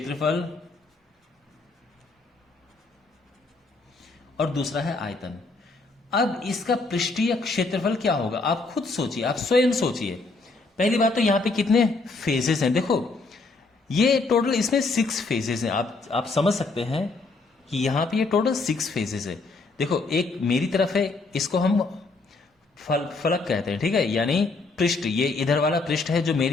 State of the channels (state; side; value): quieter; right; 3.7 dB